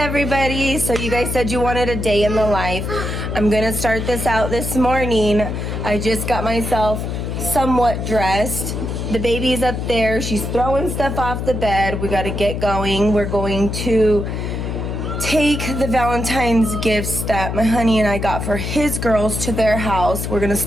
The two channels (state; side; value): noise; left; hum, 4 dB below the sound